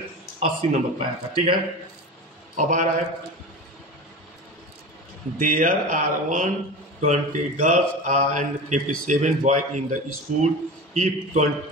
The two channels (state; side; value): normal; both; correlation 0.30